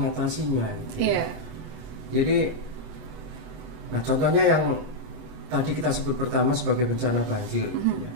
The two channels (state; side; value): late; left; 25 ms